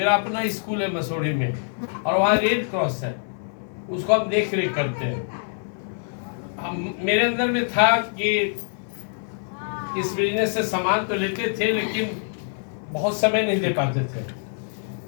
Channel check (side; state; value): right; silent; 62 dB below the other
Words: अपना स्कूल है मसूरी में और वहाँ रेड क्रॉस है, उसको हम देख रेख करते हैं। मेरे अंदर में था कि इस बिजनेस से सामान तो लेते थे लेकिन बहुत समय नहीं दे पाते थे।